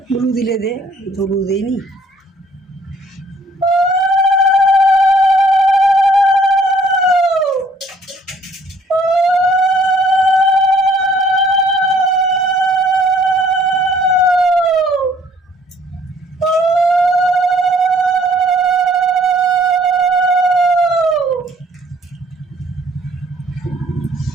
ধুলু দিলে দে, ধুলু দেয়নি।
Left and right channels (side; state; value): both; normal; correlation 0.60